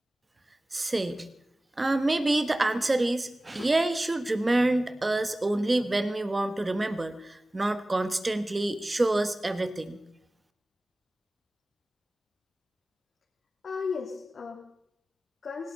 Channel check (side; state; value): both; normal; correlation 0.97